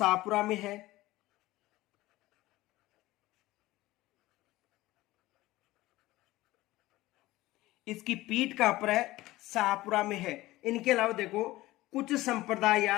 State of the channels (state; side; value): quieter; right; 17.8 dB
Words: में है। इसकी पीठ कहां पर है, शाहपुरा में है। इनके अलावा देखो कुछ संप्रदाय